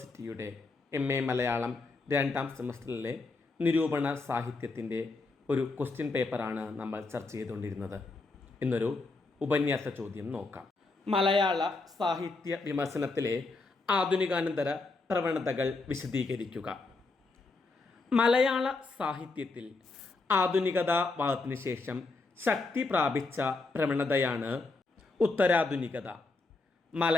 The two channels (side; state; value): right; quieter; 3.6 dB